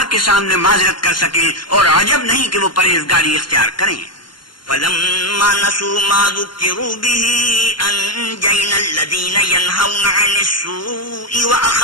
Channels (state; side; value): late; right; 0.72 ms